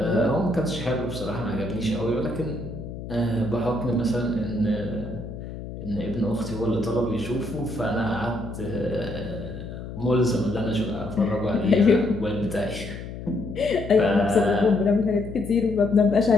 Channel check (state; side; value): noise; left; hum, 10 dB below the sound